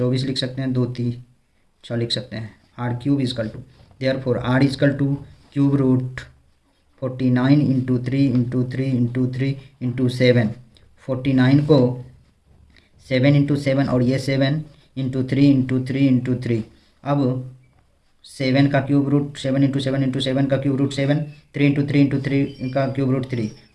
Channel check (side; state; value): both; identical; correlation 1.00